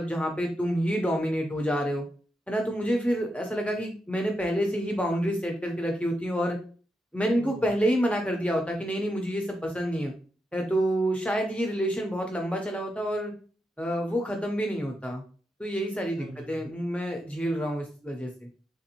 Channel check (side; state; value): both; normal; correlation 0.85